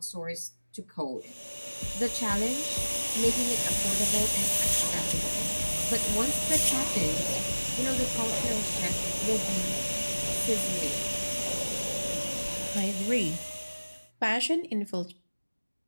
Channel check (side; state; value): both; inverted; correlation -1.00